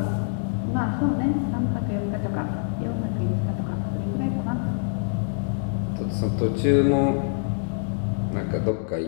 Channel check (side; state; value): right; silent; digital silence